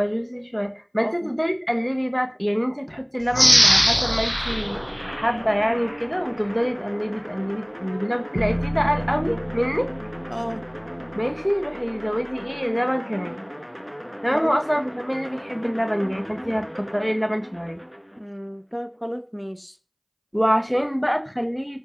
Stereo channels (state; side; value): identical; both; correlation 1.00